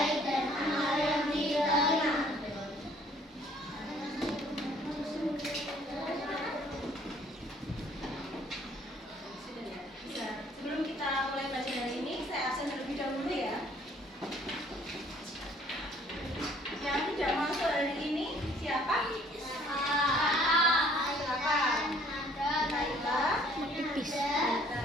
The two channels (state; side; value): normal; both; correlation 0.59